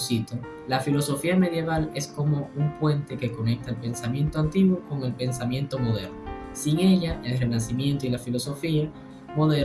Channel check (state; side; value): identical; both; correlation 1.00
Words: la filosofía medieval es como un puente que conecta el pensamiento antiguo con el pensamiento moderno. Sin ella, el Renacimiento y la filosofía